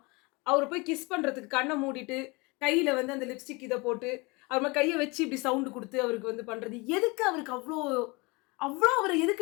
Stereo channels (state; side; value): quieter; right; 26.5 dB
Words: அவரை போய் கிஸ் பண்றதுக்கு கண்ணை மூடிட்டு கையில வந்து அந்த லிப்ஸ்டிக் இதை போட்டு அவர் கையை வச்சு இப்படி சவுண்டு கொடுத்து அவருக்கு வந்து பண்றது எதுக்கு? அவருக்கு அவ்வளோ அவரை